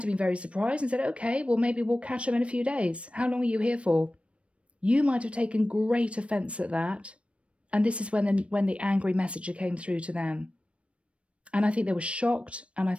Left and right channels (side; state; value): left; late; 0.061 ms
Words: have been very surprised and said, okay, well, maybe we'll catch them in a few days. How long are you here for? You might have taken great offence at that. And this is when the angry messenger came through to them. And I think they were shocked, and I